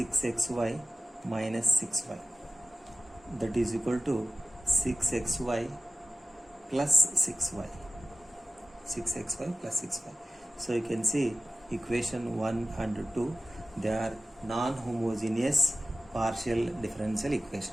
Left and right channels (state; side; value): normal; both; correlation 0.95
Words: minus 6y, that is equal to 6xy plus 6y. 6xy plus 6y. So you can see equation 1 and 2, they are non-homogeneous partial differential